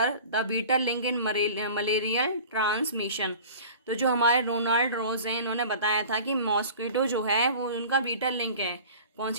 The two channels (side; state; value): both; inverted; correlation -0.42